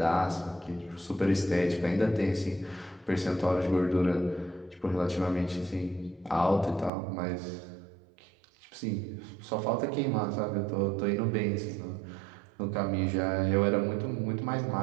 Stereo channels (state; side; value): drops out; left; at 6.9 s